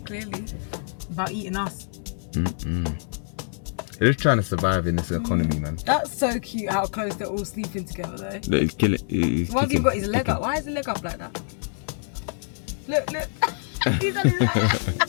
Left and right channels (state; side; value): silent; right; 61 dB below the other